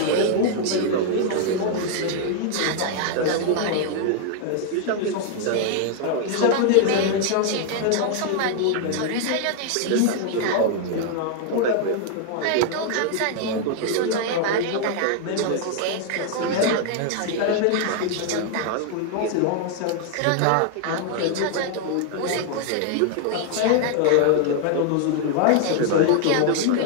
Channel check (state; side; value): different; both; correlation 0.00